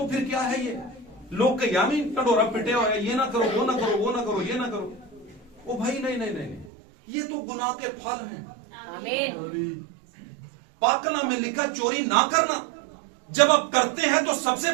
फिर क्या है ये? लोग के यामी टडोरा पिटे हुए, ये ना करो, वो ना करो, वो ना करो, ये ना करो। ओ भाई नहीं नहीं नहीं, ये तो गुनाह के फल हैं। पाक कलाम में लिखा चोरी ना करना। जब आप करते हैं तो सबसे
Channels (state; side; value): drops out; left; at 6.7 s